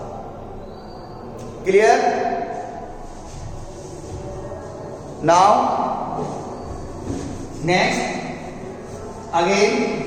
Clear? Now next again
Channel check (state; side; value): identical; both; correlation 1.00